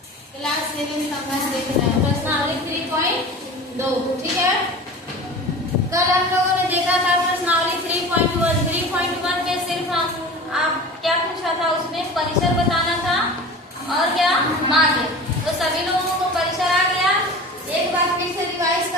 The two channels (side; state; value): both; normal; correlation 0.36